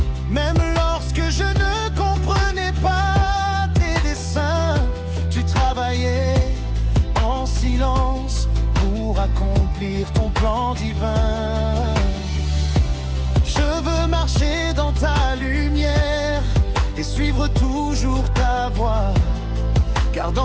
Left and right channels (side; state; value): both; identical; correlation 1.00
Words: Même lorsque je ne comprenais pas tes desseins, tu travailles d'accomplir ton plan divin. Je veux marcher dans ta lumière et suivre toujours ta voie, car